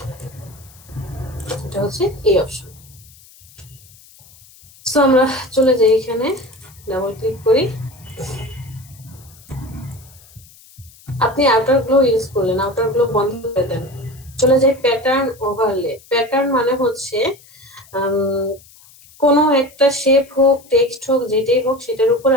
এটা হচ্ছে এই অপশন। সো আমরা চলে যাই, এখানে ডাবল ক্লিক করি। আপনি আউটার গ্লো ইউজ করলেন, আউটার গ্লো বন্ধ করে দেন, চলে যাই প্যাটার্ন ওভারলে। প্যাটার্ন মানে হচ্ছে কোনো একটা শেপ হোক, টেক্সট হোক, যেটাই হোক, সেটার উপরে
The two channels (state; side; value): noise; left; hiss, 25 dB below the sound